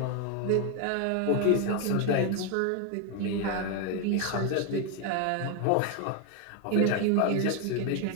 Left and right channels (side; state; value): both; different; correlation 0.01